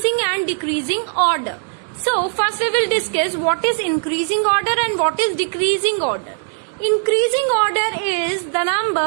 and decreasing order. So first we will discuss what is increasing order and what is decreasing order. Increasing order is the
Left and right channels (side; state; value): left; silent; 61 dB below the other